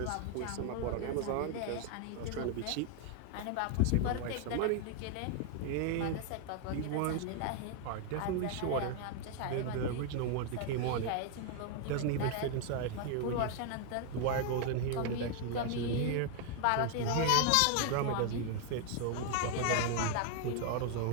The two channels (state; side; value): different; both; correlation 0.00